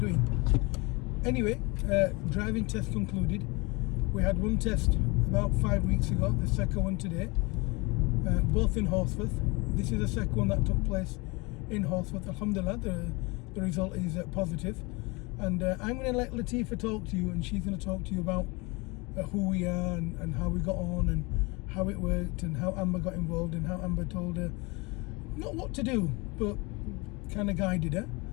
Anyway, driving test concluded. We had one test about 5 weeks ago, the second one today, both in Horsforth. This is the second one that took place in Horsforth. Alhamdulillah, the result is positive. And I'm going to let Latifa talk to you, and she's going to talk to you about who we are and how we got on and how it worked and how Amber got involved and how Amber told her not what to do, but kind of guided her,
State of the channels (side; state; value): right; quieter; 26.6 dB